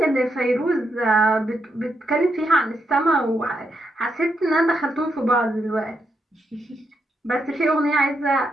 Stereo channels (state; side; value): normal; both; correlation 0.81